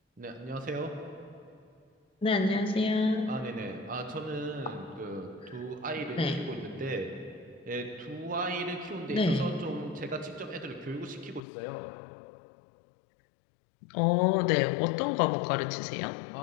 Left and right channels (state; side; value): drops out; right; at 11.4 s